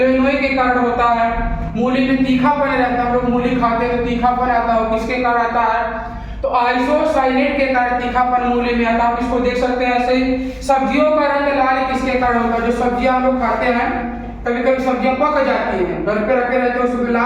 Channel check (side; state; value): both; identical; correlation 1.00